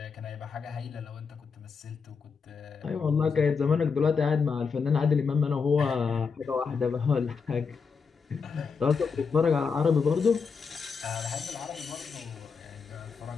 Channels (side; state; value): right; quieter; 5.5 dB